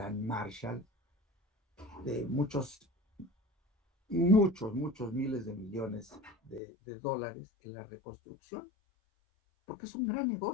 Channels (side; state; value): right; drops out; at 6.6 s